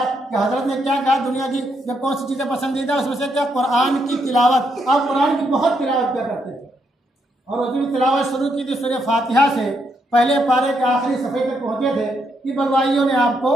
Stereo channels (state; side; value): normal; both; correlation 0.77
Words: कि हजरत ने क्या कहा, दुनिया की जब कौन सी चीज़ें पसंदीदा उसमें से क्या कुरान की तिलावत। आप कुरान की बहुत तिलावत क्या करते थे और उसकी तिलावत शुरू की थी सूरह फातिहा से, पहले पारे के आखिरी सफ़े तक पहुँचे थे कि बलवाइयों ने आपको